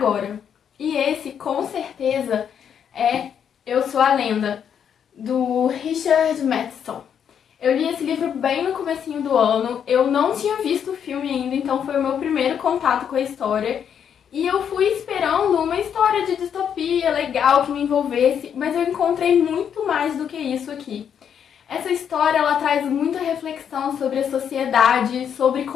E esse, com certeza, é Eu Sou a Lenda, do Richard Matheson. Eu li esse livro bem no comecinho do ano, eu não tinha visto o filme ainda, então foi o meu primeiro contato com a história. E eu fui esperando uma história de distopia legal que me envolvesse, mas eu encontrei muito mais do que isso aqui. Essa história ela traz muita reflexão sobre a sociedade, sobre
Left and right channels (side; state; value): right; quieter; 8.2 dB